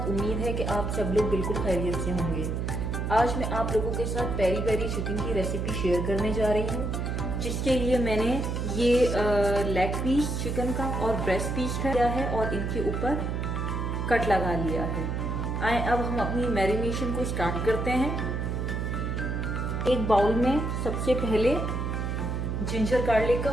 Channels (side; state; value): right; noise; hum, 1 dB below the sound